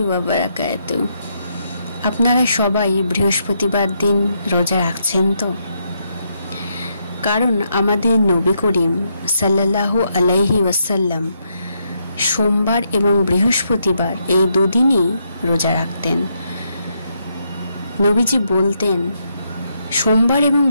ওয়া বারাকাতুহু। আপনারা সবাই বৃহস্পতিবার দিন রোজা রাখছেন তো? কারণ আমাদের নবী করিম সাল্লাল্লাহু আলাইহি ওয়াসাল্লাম সোমবার এবং বৃহস্পতিবার এই দুদিনই রোজা রাখতেন। নবীজি বলতেন, সোমবার এবং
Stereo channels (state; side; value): inverted; both; correlation -0.78